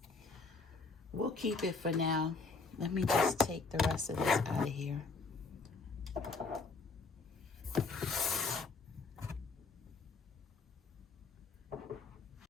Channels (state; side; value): quieter; right; 4.1 dB